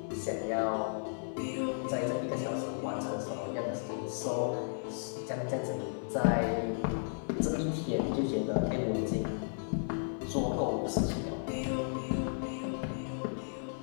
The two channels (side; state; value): right; silent; digital silence